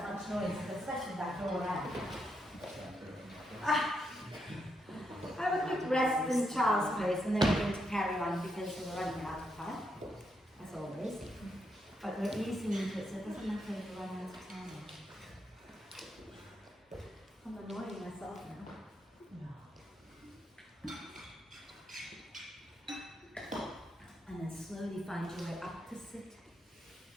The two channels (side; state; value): both; normal; correlation 0.80